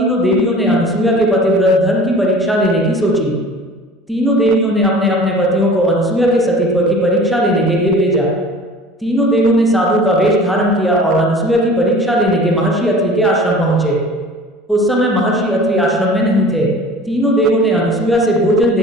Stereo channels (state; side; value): normal; both; correlation 0.43